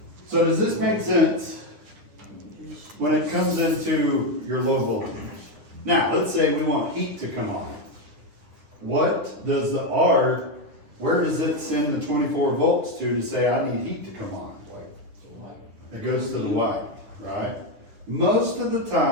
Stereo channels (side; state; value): left; late; 9.8 ms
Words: So does this make sense when it comes into your low voltage? Now, let's say we want heat to come on. What does the R, where does it send the 24 volts to say I need heat to come on? It goes to the white, right? Most of the